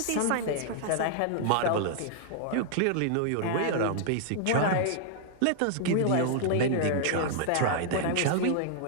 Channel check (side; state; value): both; different; correlation -0.01